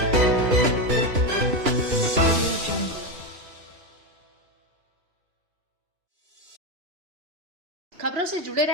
खबरों से जुड़े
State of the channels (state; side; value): late; left; 3.0 ms